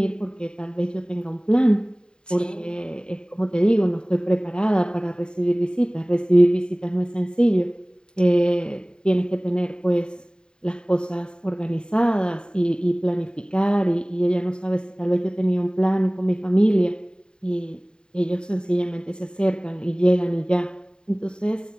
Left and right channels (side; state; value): right; late; 0.048 ms